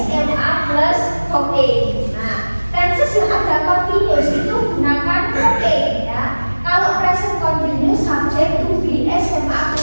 plus verb A. Nah, tenses yang ada continuous itu gunakan verb A ya. Kalau present continuous, subject to be SMA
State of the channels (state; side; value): inverted; both; correlation -1.00